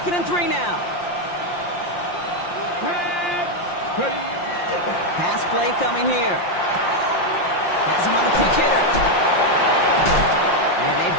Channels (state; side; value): late; right; 5.7 ms